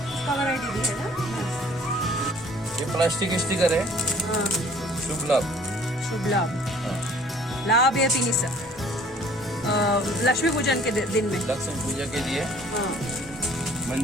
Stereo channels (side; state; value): both; normal; correlation 0.54